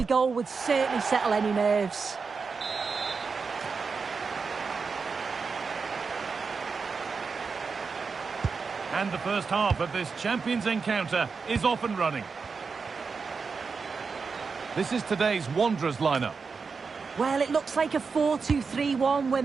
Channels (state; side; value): quieter; left; 5.0 dB